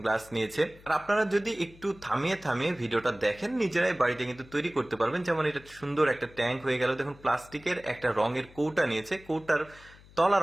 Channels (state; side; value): noise; left; hum, 23 dB below the sound